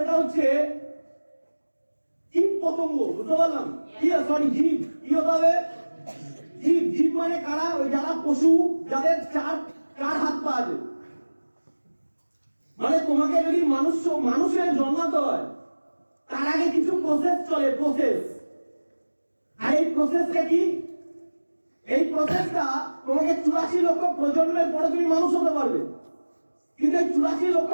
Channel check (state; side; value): inverted; both; correlation -1.00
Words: হচ্ছে জীব পতঙ্গ। বুঝতে পারলাম? সরি, জীব। কি হতে হবে? জীব। জীব মানে কারা? ওই যারা পশু, যাদের চার হাত পা আছে। মানে তোমাকে যদি মানুষের জন্মাতে হয় তার আগে কিছু প্রসেস চলে, প্রসেস। আর এই প্রসেসটা কি? এই প্রসেসটা তোমাকে 84 লক্ষ প্রজন্মের পরে তুমি মানুষ হতে পারবে, কিন্তু এই 84 লক্ষ